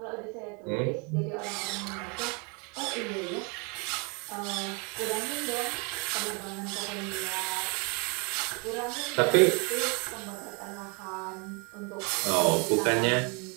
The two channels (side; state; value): left; quieter; 33.2 dB